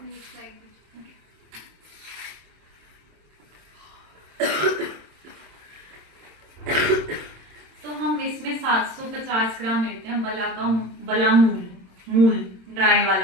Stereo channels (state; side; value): late; left; 26 ms